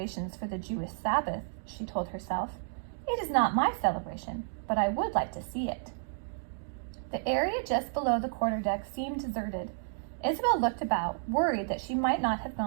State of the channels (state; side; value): silent; left; digital silence